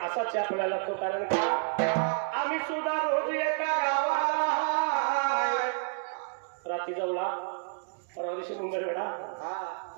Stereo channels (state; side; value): silent; left; digital silence